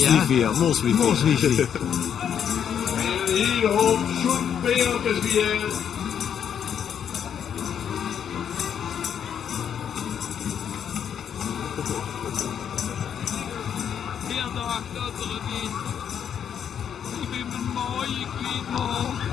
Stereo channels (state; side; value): quieter; right; 8.5 dB